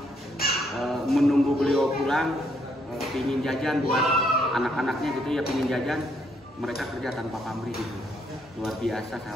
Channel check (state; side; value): normal; both; correlation 0.72